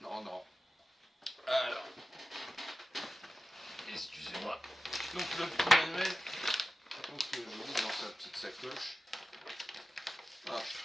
Non. Alors, excusez-moi. Donc le petit manuel, donc je mets dans sa petite sacoche. Hop.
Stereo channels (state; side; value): normal; both; correlation 0.94